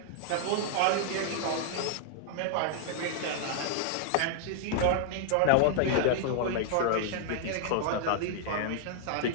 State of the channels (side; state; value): both; different; correlation -0.01